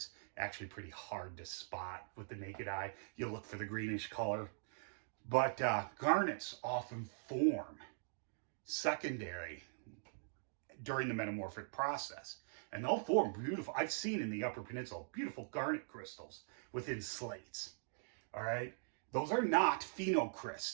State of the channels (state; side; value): silent; left; digital silence